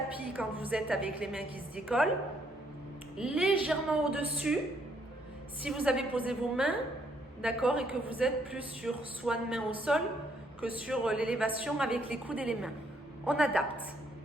quand vous êtes avec les mains qui se décollent. Légèrement au-dessus, si vous avez posé vos mains, d'accord, et que vous êtes plus sur swan main au sol que sur l'élévation avec les coudes et les mains. On adapte.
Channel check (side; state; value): both; normal; correlation 0.70